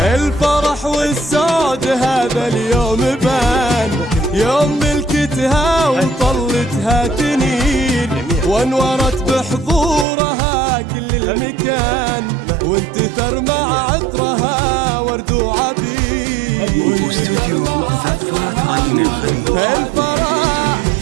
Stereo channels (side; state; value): left; drops out; at 10.1 s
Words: والسعد هذا اليوم بان، يوم ملكتها وطلتها تنين، وانورت بحضورها كل المكان، وانتثر مع عطرها ورد وعبيد. واستوديو زفات رنين الخليج.